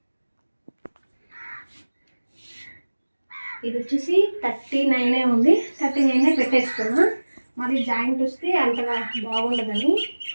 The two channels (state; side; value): inverted; both; correlation -1.00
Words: ఇది వచ్చేసి 39 ఉంది. 39 పెట్టేసుకున్నా. మరి జాయింట్ వస్తే అంతగా బాగుండదని.